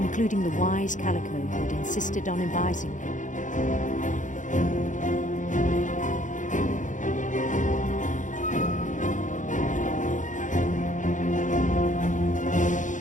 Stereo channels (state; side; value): late; right; 0.37 ms